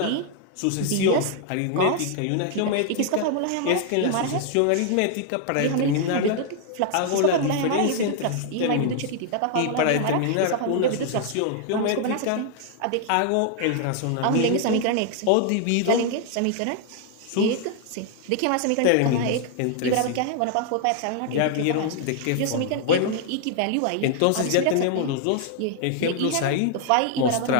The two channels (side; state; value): both; different; correlation 0.00